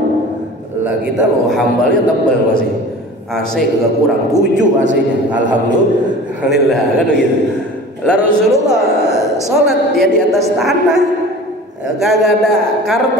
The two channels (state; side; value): normal; both; correlation 0.40